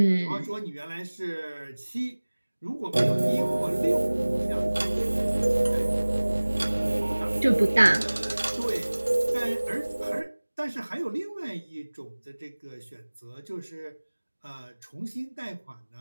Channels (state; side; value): inverted; both; correlation -1.00